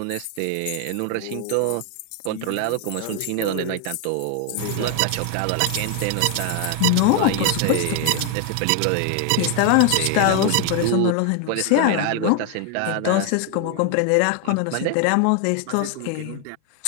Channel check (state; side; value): different; both; correlation 0.00